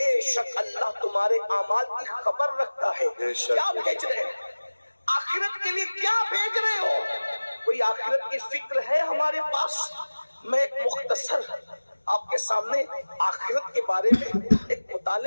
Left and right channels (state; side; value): inverted; both; correlation -1.00